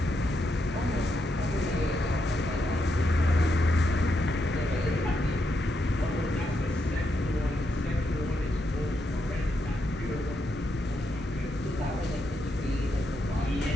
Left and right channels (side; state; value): both; normal; correlation 0.81